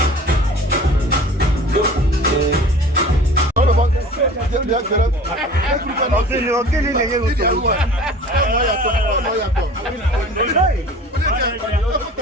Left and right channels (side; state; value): both; normal; correlation 0.43